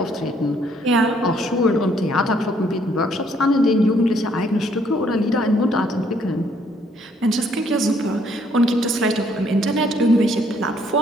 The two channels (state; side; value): normal; both; correlation 0.66